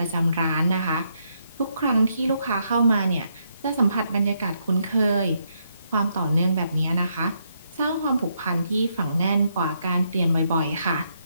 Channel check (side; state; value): both; inverted; correlation -0.77